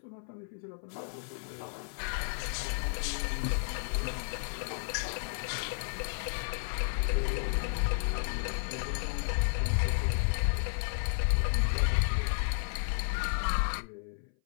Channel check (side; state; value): right; silent; 56 dB below the other